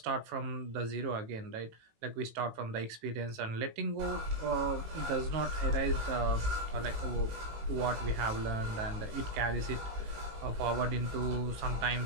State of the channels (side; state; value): left; late; 18 ms